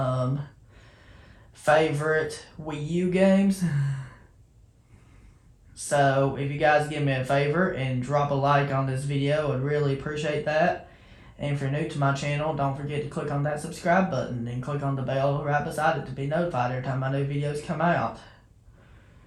favorite Wii U games. So if you guys give me a favor and drop a like on this video, I'd really appreciate that. And if you're new to my channel, don't forget to click on that subscribe button and click on the bell right beside it to be notified every time my new videos come out.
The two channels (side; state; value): both; identical; correlation 1.00